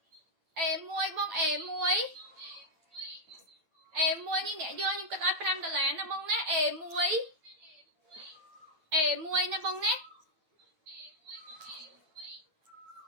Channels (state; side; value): late; left; 9.1 ms